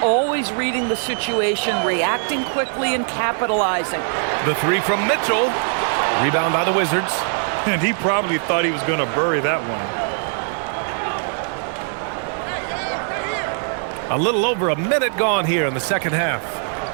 always reading the situation, reacting quickly, and capitalizing. The 3 from Mitchell. Rebound by the Wizards. And he probably thought he was going to bury that one. A little over a minute gone here in the second half.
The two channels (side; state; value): left; silent; 59 dB below the other